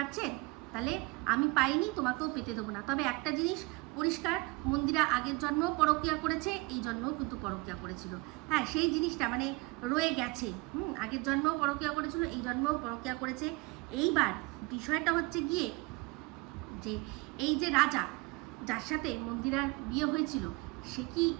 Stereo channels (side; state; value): left; quieter; 25.1 dB